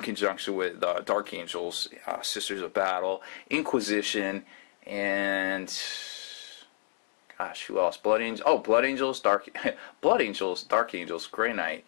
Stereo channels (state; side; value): silent; right; digital silence